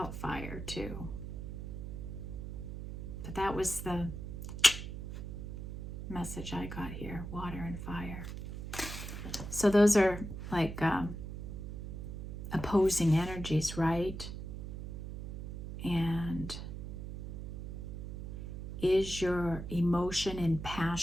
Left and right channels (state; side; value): noise; right; hum, 7 dB below the sound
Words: fire too. But that was the message I got here, water and fire. So those are like opposing energies, right? And is your emotion and